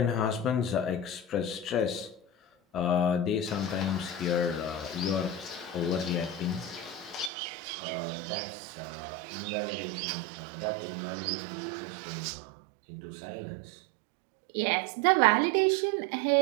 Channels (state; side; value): drops out; left; at 7.3 s